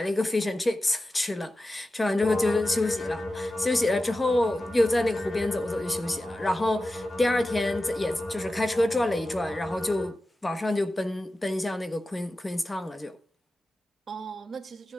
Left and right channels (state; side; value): normal; both; correlation 0.93